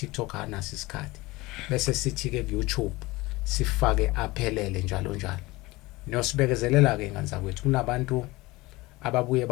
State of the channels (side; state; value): right; quieter; 21.3 dB